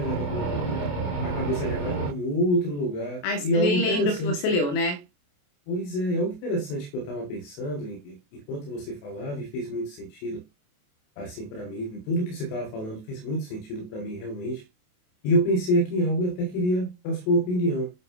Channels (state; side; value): late; right; 28 ms